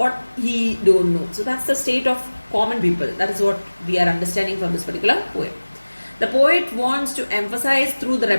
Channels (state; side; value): inverted; both; correlation -1.00